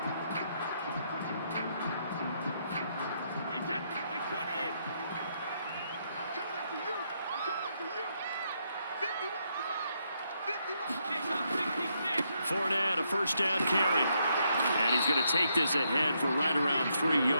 Fournette, a first down carry. And he's going to take this ahead for right around 3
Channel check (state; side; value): inverted; both; correlation -0.77